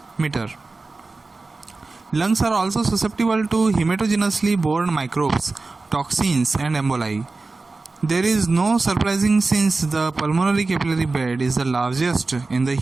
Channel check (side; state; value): left; quieter; 3.6 dB